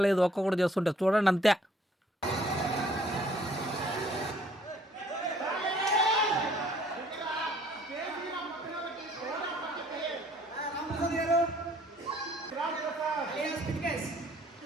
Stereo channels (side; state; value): both; normal; correlation 0.60